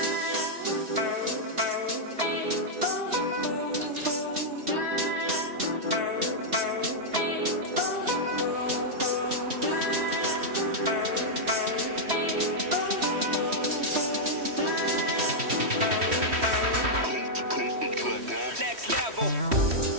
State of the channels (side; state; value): left; late; 3.1 ms